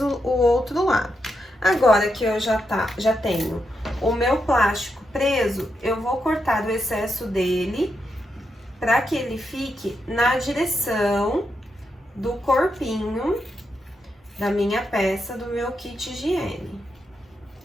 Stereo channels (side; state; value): both; normal; correlation 0.84